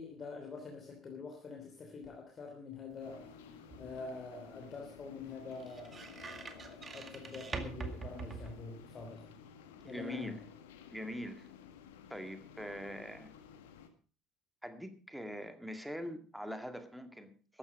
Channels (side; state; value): both; normal; correlation 0.69